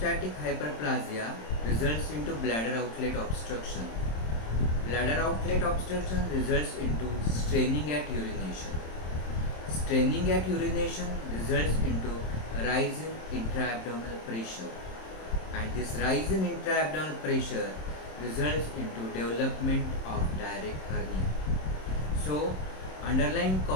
hyperplasia results into bladder outlet obstruction. Bladder outlet obstruction results into straining at urination. Straining at urination results into rise in intra-abdominal pressure. And this rise in intra-abdominal pressure results into development of direct hernia. So, underlying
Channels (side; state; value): right; late; 27 ms